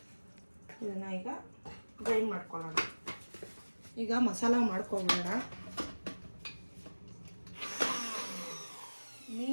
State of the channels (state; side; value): inverted; both; correlation -1.00